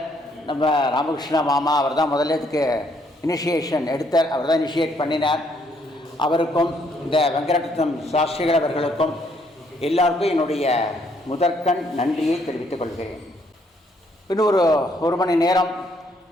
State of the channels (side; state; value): both; normal; correlation 0.69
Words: நம்ம ராமகிருஷ்ண மாமா, அவர் தான் முதல்ல இதுக்கு இனிஷியேஷன் எடுத்தார், அவர் தான் இனிஷியேட் பண்ணினார். அவருக்கும் இந்த வெங்கடரத்னம் சாஸ்திரிகள் அவர்களுக்கும் எல்லாருக்கும் என்னுடைய முதற்கண் நன்றியை தெரிவித்துக் கொள்கிறேன். இன்னும் ஒரு மணி நேரம்